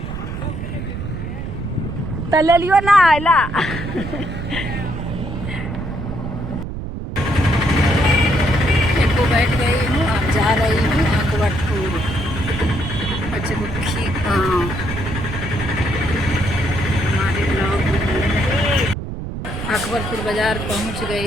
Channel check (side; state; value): right; noise; rumble, 7 dB below the sound